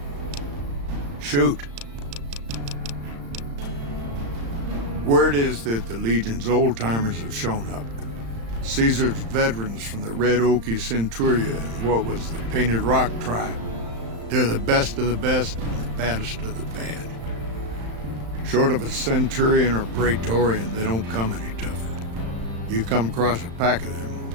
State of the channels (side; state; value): left; late; 35 ms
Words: Shoot. Word is that the Legion's old-timers have shown up. Caesar's veterans from the Red Okie Centuria and what was the Painted Rock tribe. They're the best of the best and the baddest of the bad. Short of a Centurion or Praetorian, they don't come any tougher. You come across a pack of them,